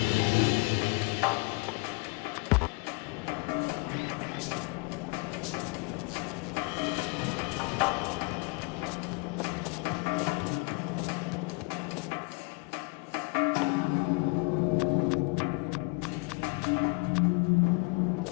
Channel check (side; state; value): right; quieter; 30.4 dB